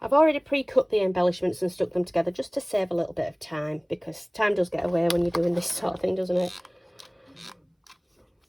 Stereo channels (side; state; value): both; identical; correlation 1.00